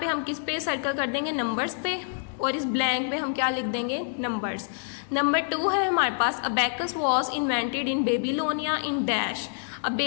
हम किस पे सर्कल कर देंगे, नंबर्स पे, और इस ब्लैंक में हम क्या लिख देंगे, नंबर्स। नंबर 2 है हमारे पास, abacus was invented in Babylonia in dash. अब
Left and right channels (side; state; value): right; silent; 60 dB below the other